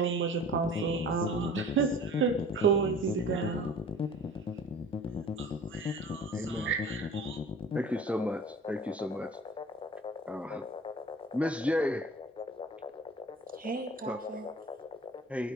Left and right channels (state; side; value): normal; both; correlation 0.43